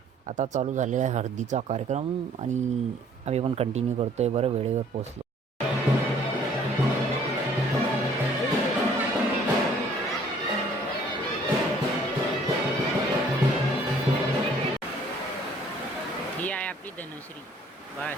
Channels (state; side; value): normal; both; correlation 0.58